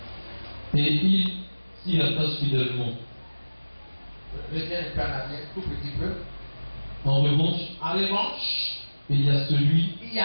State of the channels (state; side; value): inverted; both; correlation -1.00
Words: et il s'y attache fidèlement. Reviens un peu en arrière, tout petit peu. En revanche, il y a celui